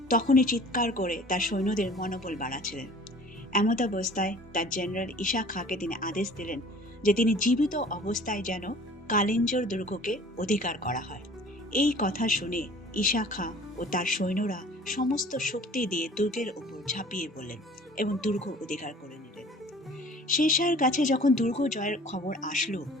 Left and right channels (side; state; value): both; normal; correlation 0.48